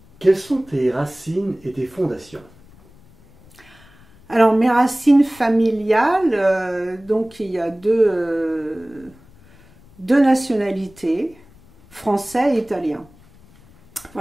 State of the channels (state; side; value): noise; left; rumble, 26 dB below the sound